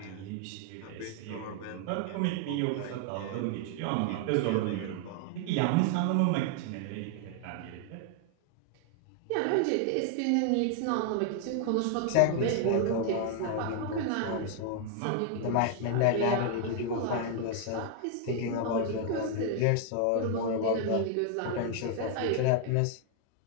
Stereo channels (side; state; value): both; different; correlation 0.00